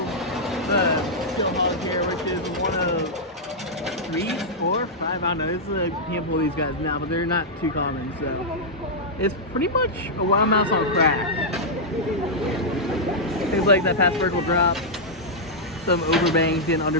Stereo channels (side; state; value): both; normal; correlation -0.07